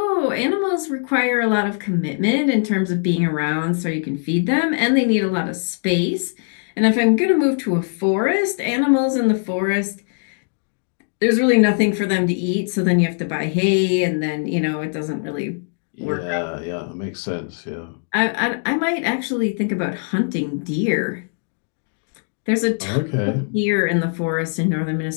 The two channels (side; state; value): right; silent; 65 dB below the other